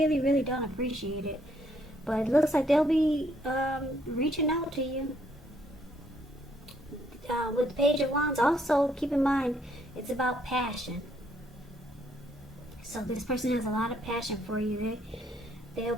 really don't appreciate it. But it looks like they'll be reaching out to you. With the Page of Wands, also keep in mind, it's about passion. So this person has a lot of passion for you. They're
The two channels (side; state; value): both; normal; correlation 0.69